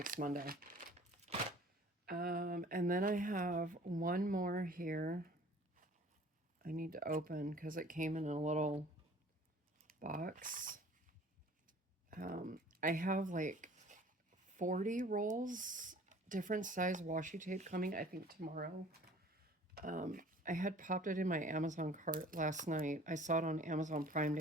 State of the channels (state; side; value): normal; both; correlation 0.50